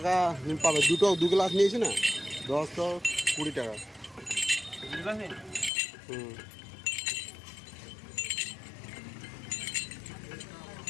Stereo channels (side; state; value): right; drops out; at 5.7 s